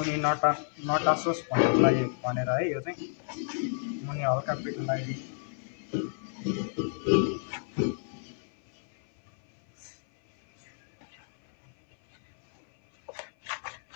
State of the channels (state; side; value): silent; right; 56 dB below the other